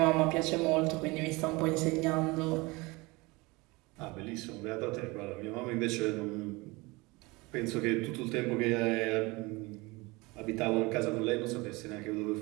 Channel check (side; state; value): left; quieter; 24.1 dB